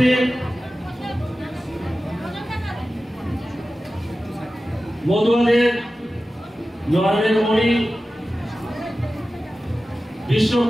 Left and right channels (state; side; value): normal; both; correlation 0.95